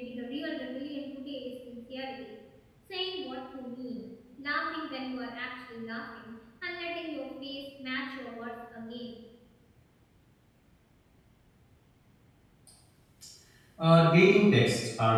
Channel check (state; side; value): identical; both; correlation 1.00